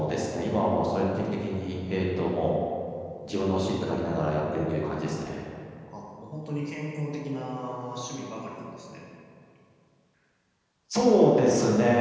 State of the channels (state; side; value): identical; both; correlation 1.00